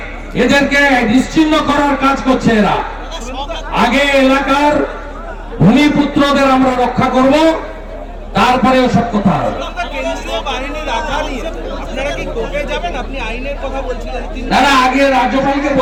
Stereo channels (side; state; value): both; identical; correlation 1.00